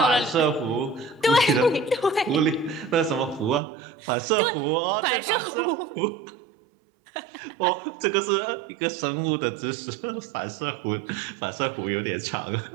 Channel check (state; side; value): drops out; left; at 3.6 s